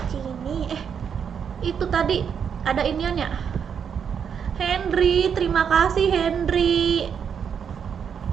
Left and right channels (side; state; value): left; quieter; 7.4 dB